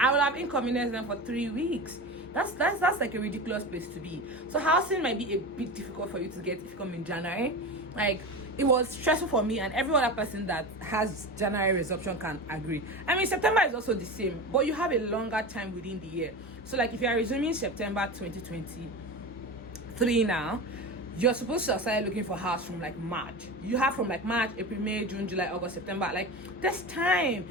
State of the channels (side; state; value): both; normal; correlation 0.27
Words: I would have inconvenienced them for 3 weeks. That's like a ridiculous place to be. So housing might be a bit difficult for you to get if you come in January. Like it was stressful for me, and every other person that has January resumption can agree. I mean, September is also the same, but you have a longer time within the year. So like if you are resuming September 2023 now, you're supposed to start looking for house from like March. You have from like March, April, May, June, July, August, September. Like there's time.